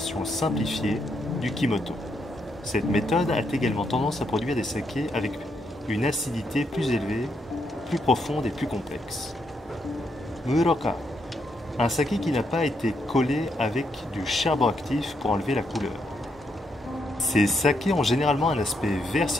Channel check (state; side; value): normal; both; correlation 0.78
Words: simplifiée du Kimoto. Cette méthode a également tendance à produire des sakés avec une acidité plus élevée, plus profonde et plus complexe. Muroka, un saké qui n'a pas été collé avec du charbon actif pour enlever la couleur. Ces sakés ont généralement un aspect vert